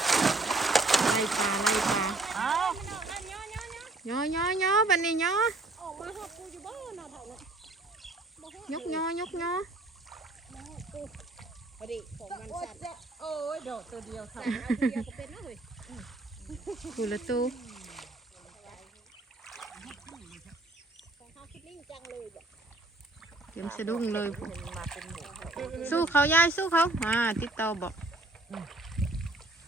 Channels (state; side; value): quieter; left; 3.0 dB